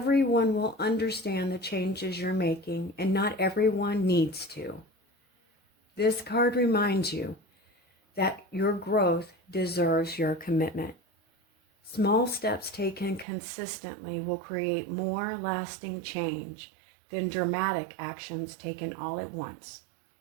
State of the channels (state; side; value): drops out; left; at 13.2 s